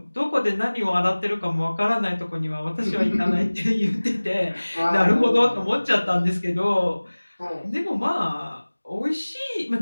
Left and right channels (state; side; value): inverted; both; correlation -1.00